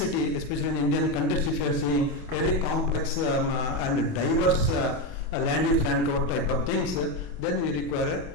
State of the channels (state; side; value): late; right; 28 ms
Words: especially in Indian context, if you are seeing very complex and diverse land use land cover type of things, then we